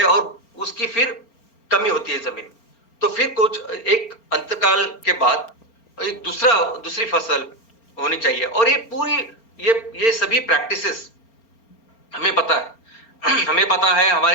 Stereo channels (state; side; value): late; right; 4.4 ms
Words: और उसकी फिर कमी होती है जमीन। तो फिर कुछ एक अंतकाल के बाद एक दूसरी फसल होनी चाहिए। और ये पूरी ये सभी प्रैक्टिसेस हमें पता है, हमारे